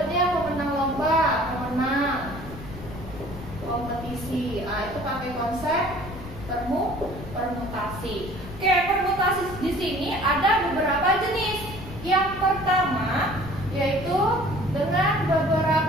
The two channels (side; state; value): left; noise; rumble, 12 dB below the sound